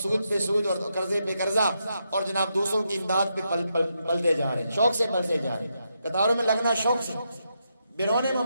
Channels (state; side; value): inverted; both; correlation -0.83